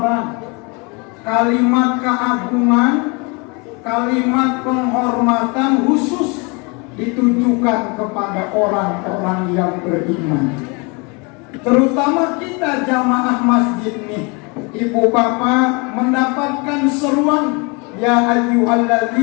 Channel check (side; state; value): right; quieter; 30.2 dB